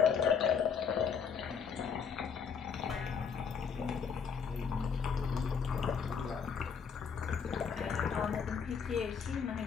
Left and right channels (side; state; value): right; quieter; 6.5 dB